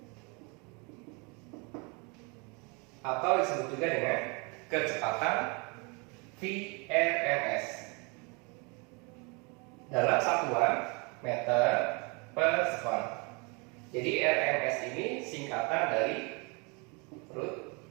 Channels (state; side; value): quieter; left; 31.0 dB